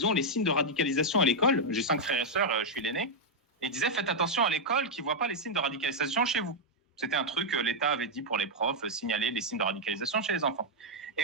ont les signes de radicalisation à l'école. » J'ai 5 frères et sœurs, je suis l'aîné. Et ils disaient « Faites attention à l'école qu'ils ne voient pas les signes de radicalisation chez vous. » C'était un truc que l'État avait dit pour les profs, signaler les signes de radicalisation chez les enfants.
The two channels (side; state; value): both; normal; correlation -0.02